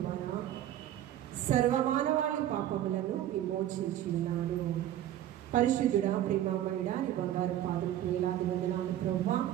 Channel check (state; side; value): quieter; left; 12.2 dB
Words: ద్వారా సర్వమానవాళి పాపములను విమోచించి ఉన్నాడు. పరిశుద్ధుడా, ప్రేమామయుడా, నీ బంగారు పాదం వేలాది వందనాలు ప్రభువా.